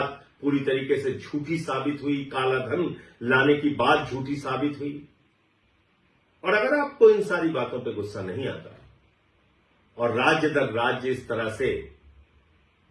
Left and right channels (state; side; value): identical; both; correlation 1.00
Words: पूरी तरीके से झूठी साबित हुई, काला धन लाने की बात झूठी साबित हुई, और अगर आपको इन सारी बातों पे गुस्सा नहीं आता और राज्य दर राज्य इस तरह से